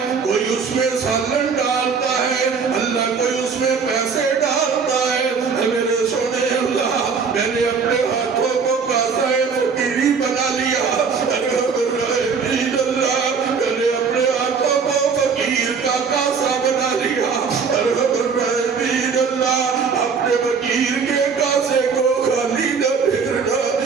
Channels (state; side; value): quieter; left; 5.6 dB